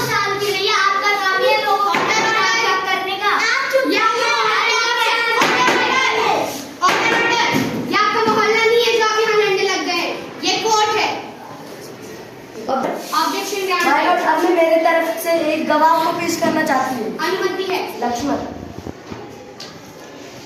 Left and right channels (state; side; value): identical; both; correlation 1.00